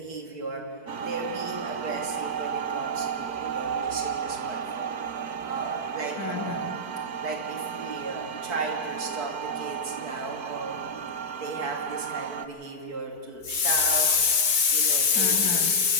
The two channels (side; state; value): right; late; 4.5 ms